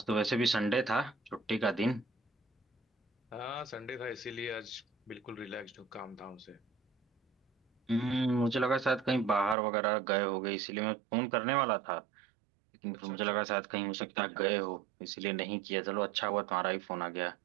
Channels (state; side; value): drops out; left; at 9.6 s